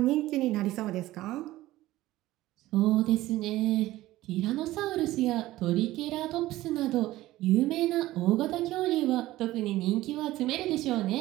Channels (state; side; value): quieter; left; 16.5 dB